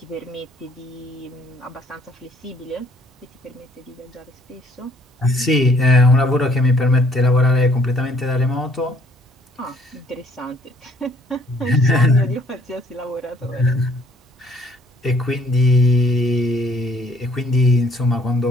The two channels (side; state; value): both; normal; correlation 0.62